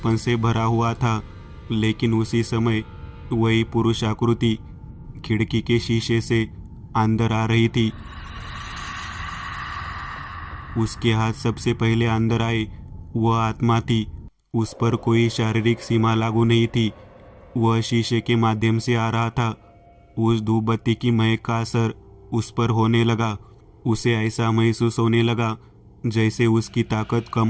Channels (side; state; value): both; identical; correlation 1.00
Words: से भरा हुआ था, लेकिन उसी समय वही पुरुष आकृति खिड़की के शीशे से अंदर आ रही थी। उसके हाथ सबसे पहले अंदर आए। वह आत्मा थी। उस पर कोई शारीरिक सीमा लागू नहीं थी। वह शीशे के माध्यम से आ रहा था। उस धूप बत्ती की महक का असर उस पर होने लगा। उसे ऐसा महसूस होने लगा जैसे उसकी ताकत कम